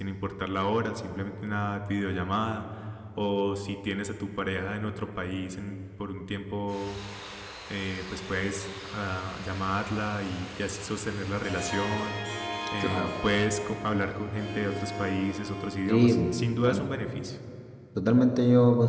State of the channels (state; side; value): identical; both; correlation 1.00